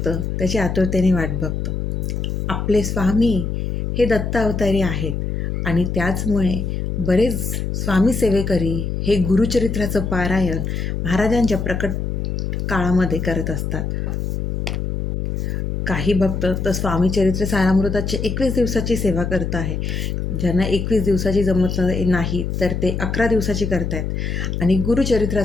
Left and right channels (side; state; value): left; noise; hum, 2 dB below the sound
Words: त्याची आतुरतेने वाट बघतो. आपले स्वामी हे दत्त अवतारी आहेत आणि त्याचमुळे बरेच स्वामी सेवेकरी हे गुरुचरित्राचं पारायण महाराजांच्या प्रकट काळामध्ये करत असतात. काही भक्त तर स्वामी चरित्र सारामृताची 21 दिवसाची सेवा करत आहे. ज्यांना 21 दिवसाची जमत नाही तर ते 11 दिवसाची करतायत. आणि